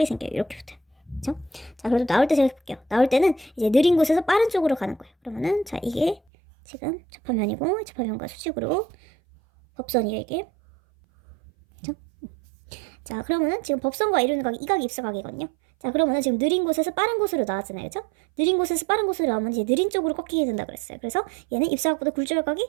생겨요. 이렇게 붙어요. 그렇죠? 자, 그래도 나올 때 생각해볼게요. 나올 때는 이제 느린 곳에서 빠른 쪽으로 가는 거예요. 그러면은 자, 이게 지금 접화면이고, 접화면과 수직으로 법선이에요, 이게. 그렇죠? 자, 그러면은 지금 법선과 이루는 각이 이 각이 입사각이거든요. 자, 그러면은 지금 느린 곳에서 빠른 곳으로 나왔잖아요. 그죠? 느린 곳에서 빠른 곳으로 나오면 이제 느린 쪽으로 꺾이게 된다 그랬어요. 그래서 얘는 입사각보다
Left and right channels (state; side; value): drops out; left; at 6.2 s